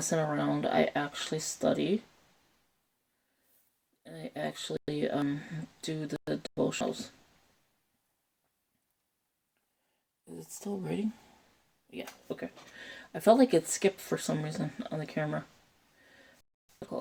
around. I actually study. And I actually do the devotionals. Is it still reading? Yeah, okay. I felt like it skipped for some reason on the camera. I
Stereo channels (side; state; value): both; identical; correlation 1.00